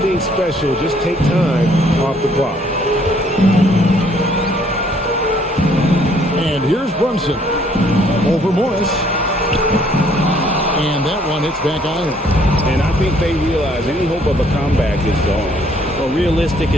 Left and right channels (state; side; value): normal; both; correlation 0.63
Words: special. Just take time off the clock. And here's Brunson. Over Morris. And that one hits back iron. And I think they realize any hope of a comeback is gone. Well, realistic